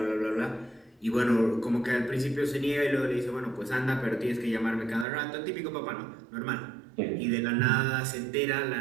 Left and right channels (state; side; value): drops out; left; at 5.1 s